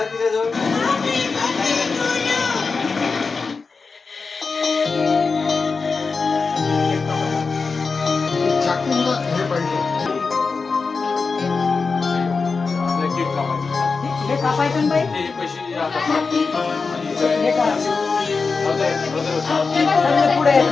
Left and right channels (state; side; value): quieter; right; 4.6 dB